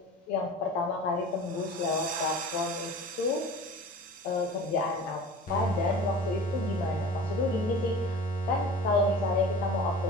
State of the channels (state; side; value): normal; both; correlation 0.39